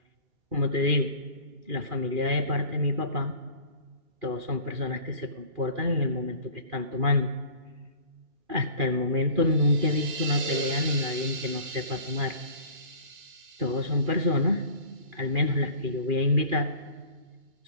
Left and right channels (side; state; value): left; late; 2.4 ms